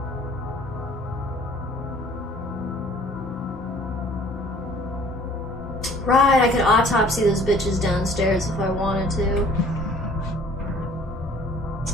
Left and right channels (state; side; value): normal; both; correlation 0.54